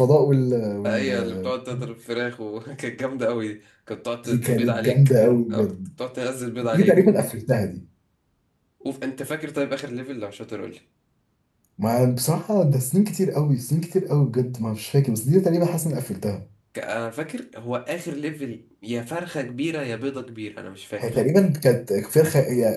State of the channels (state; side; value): identical; both; correlation 1.00